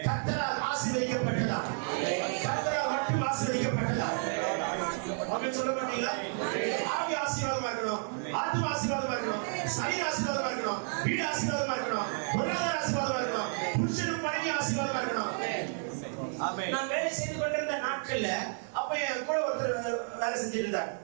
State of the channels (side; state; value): left; silent; 57 dB below the other